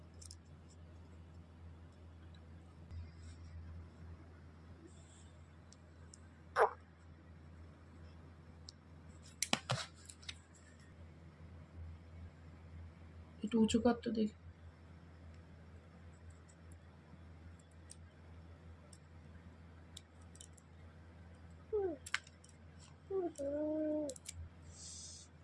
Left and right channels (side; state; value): both; identical; correlation 1.00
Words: একটু উঁচু কর তো দেখি।